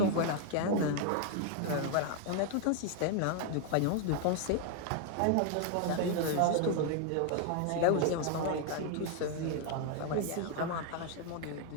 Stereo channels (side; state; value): both; different; correlation 0.00